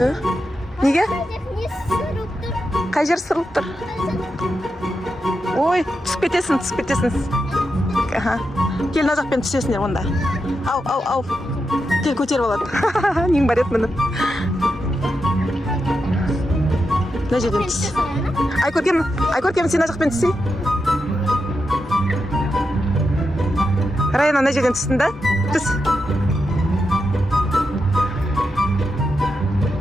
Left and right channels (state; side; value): normal; both; correlation 0.87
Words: Неге? Қай жер сырылып тұр? Ой, түсіп кетесің. Кел, мына жақпен түсесіңдер онда. Ау. Кел, көтеріп алады. Нең бар еді мініп. Мына жерден түс. Ай, көркем, сен мына жақпен түсей. Раяна, мына жерден түстің да? Түс.